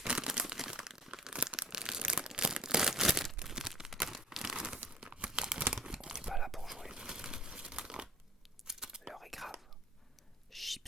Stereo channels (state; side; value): normal; both; correlation 0.46